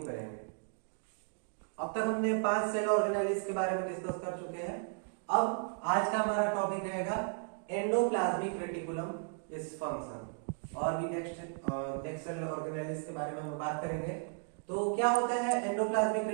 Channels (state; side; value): silent; left; 55 dB below the other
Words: करेंगे। अब तक हमने 5 सेल ऑर्गेनाइजेस के बारे में डिस्कस कर चुके हैं। अब आज का हमारा टॉपिक रहेगा एंडोप्लाज्मिक रेटिकुलम इस फंक्शन और भी नेक्स्ट सेल ऑर्गेनाइजेस के बारे में हम बात करेंगे। तो क्या होता है endoplasmic